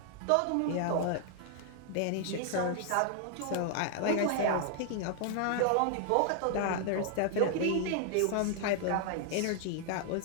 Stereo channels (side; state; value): both; different; correlation 0.00